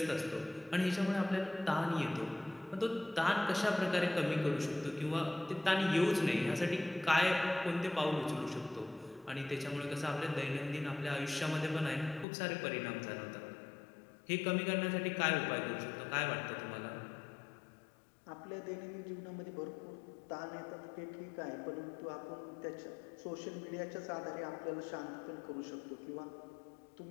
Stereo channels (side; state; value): right; drops out; at 12.2 s